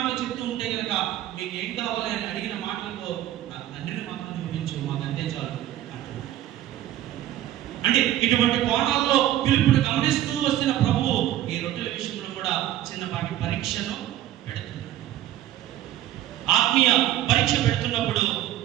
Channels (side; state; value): left; quieter; 13.2 dB